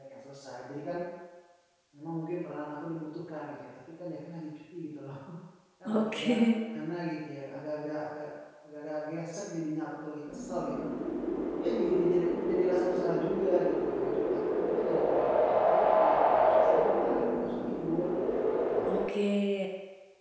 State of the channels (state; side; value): identical; both; correlation 1.00